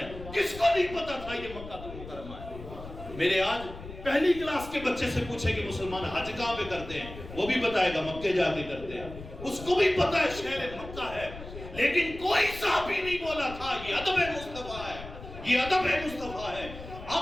کس کو نہیں پتا تھا یہ مکہ المکرمہ ہے؟ میرے آج پہلی کلاس کے بچے سے پوچھے کہ مسلمان حج کہاں پہ کرتے ہیں، وہ بھی بتائے گا مکے جا کے کرتے ہیں، اس کو بھی پتا ہے شہر مکہ ہے، لیکن کوئی صحابی نہیں بولا تھا یہ ادب مصطفیٰ ہے، یہ ادب مصطفیٰ ہے۔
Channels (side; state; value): left; noise; rumble, 13 dB below the sound